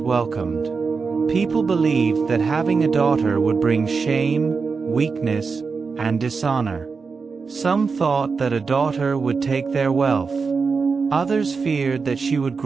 welcomed. People believed that having a daughter would bring shame, weakness, and dishonor. Some thought that a daughter would take their wealth. Others feared that she would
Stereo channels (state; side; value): quieter; left; 5.0 dB